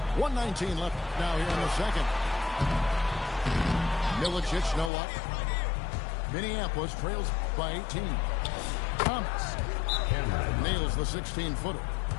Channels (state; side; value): drops out; right; at 4.9 s